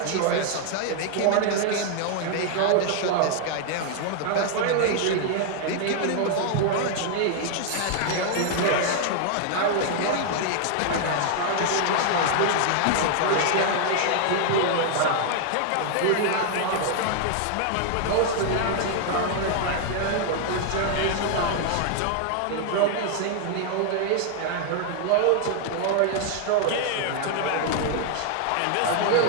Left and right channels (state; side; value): different; both; correlation 0.00